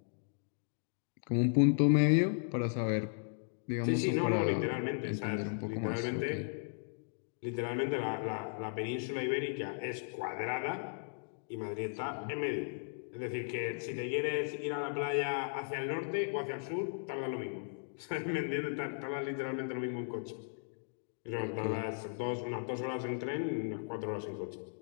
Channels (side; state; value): right; silent; digital silence